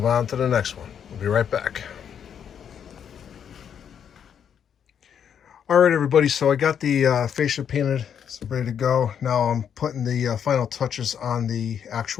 on to the next one. We'll be right back. All right, everybody, so I got the fascia painted. It's ready to go. Now I'm putting the final touches on the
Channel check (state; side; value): quieter; right; 8.2 dB